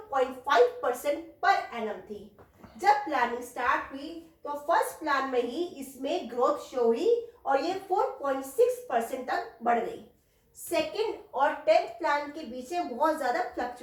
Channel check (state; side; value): identical; both; correlation 1.00